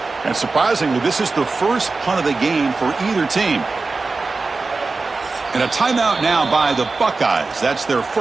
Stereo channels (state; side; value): quieter; left; 3.9 dB